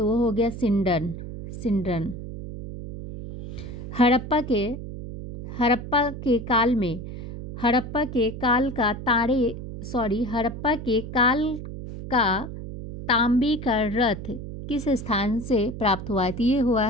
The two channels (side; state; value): right; noise; hum, 9 dB below the sound